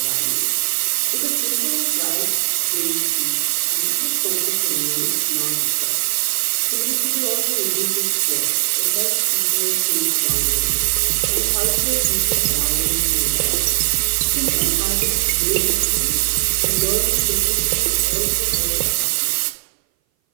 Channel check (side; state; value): left; silent; 60 dB below the other